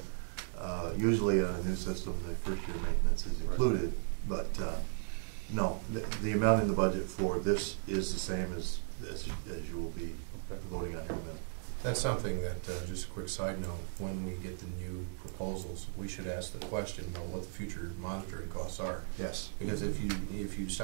Usually on a new system, the first year maintenance is included, but no, the amount in the budget for this is the same as you will be voting on here in a minute. That's something that, just a quick side note, when we get the new proposals, we should ask the question about what the future monitoring costs are. Yes. Because if you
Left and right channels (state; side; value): silent; left; digital silence